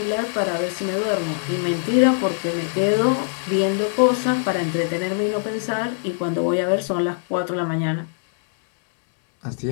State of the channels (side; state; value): right; silent; digital silence